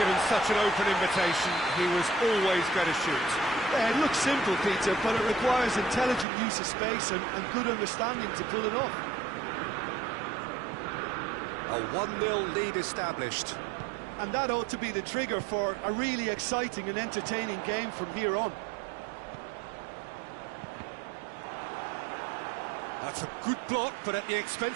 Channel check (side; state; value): left; drops out; at 6.2 s